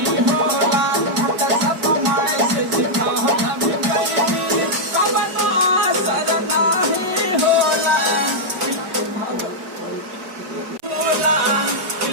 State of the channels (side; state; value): left; late; 4.6 ms